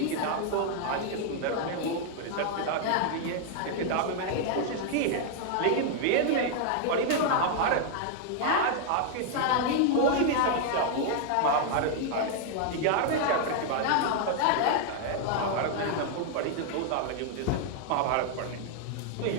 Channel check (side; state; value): both; different; correlation 0.00